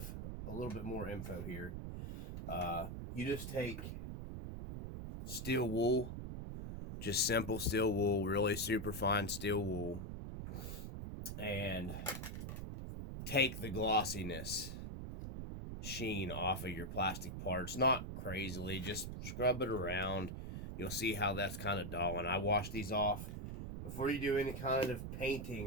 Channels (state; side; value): noise; right; rumble, 6 dB below the sound